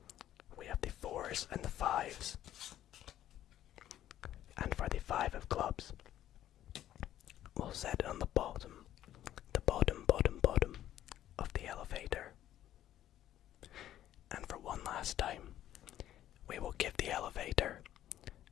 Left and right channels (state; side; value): quieter; right; 12.3 dB